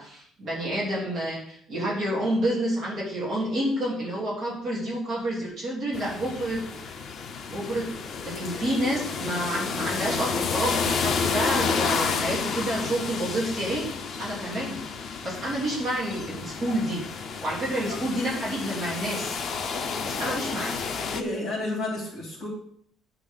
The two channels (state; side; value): normal; both; correlation 0.69